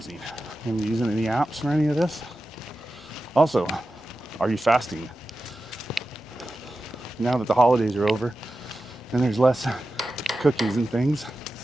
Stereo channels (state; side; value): normal; both; correlation 0.93